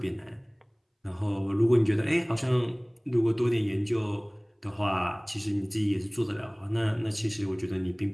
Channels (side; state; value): both; identical; correlation 1.00